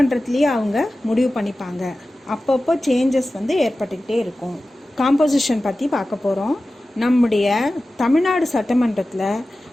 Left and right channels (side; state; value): both; normal; correlation 0.95